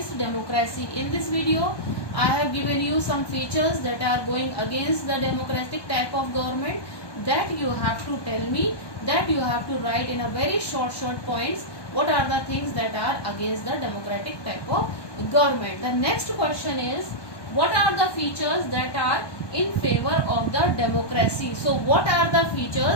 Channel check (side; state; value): right; late; 1.2 ms